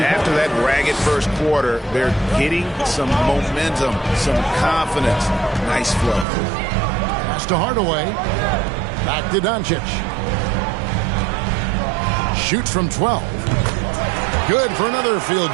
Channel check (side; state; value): left; drops out; at 6.2 s